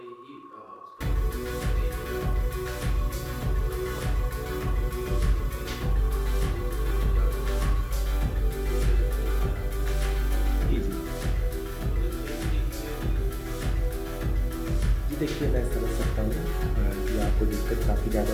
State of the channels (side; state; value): both; identical; correlation 1.00